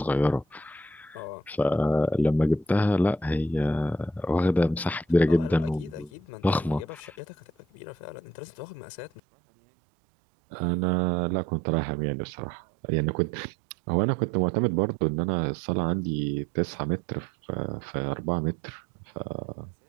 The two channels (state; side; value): drops out; left; at 9.2 s